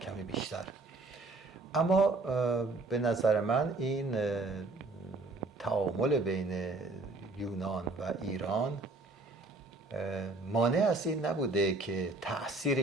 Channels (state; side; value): quieter; left; 3.2 dB